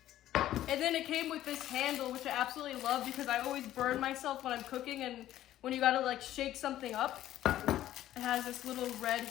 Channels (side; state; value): right; quieter; 13.1 dB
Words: And then it came with this handle, which I absolutely love because I always burn myself when I'm cooking, and when you gotta like shake something up, it has this little red